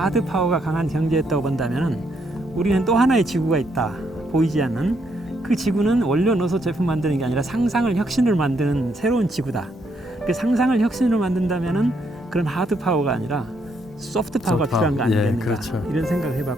파워가 강한 경제였다고 본다면은 우리는 또 하나의 지구가 있다. 보이지 않는 그 지구는 원료 넣어서 제품 만드는 게 아니라 상상을 혁신을 만드는 새로운 지구다. 그 상상을 혁신으로 만든다면은 그런 하드 파워가 아니라 소프트 파워가 필요한 거 아니겠는가. 예, 그렇죠. 이런 생각을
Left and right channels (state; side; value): normal; both; correlation 0.75